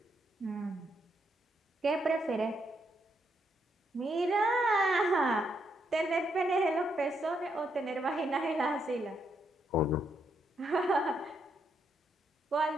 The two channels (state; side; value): normal; both; correlation 0.77